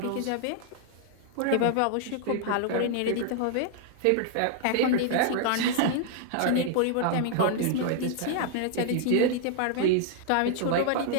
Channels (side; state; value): both; different; correlation 0.00